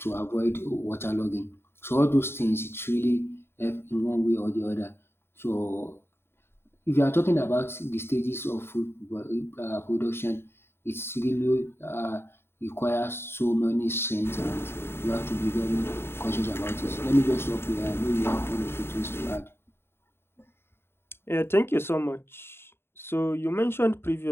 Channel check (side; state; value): right; late; 0.11 ms